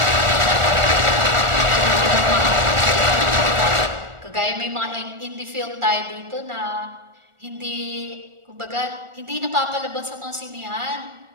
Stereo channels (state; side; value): late; left; 1.4 ms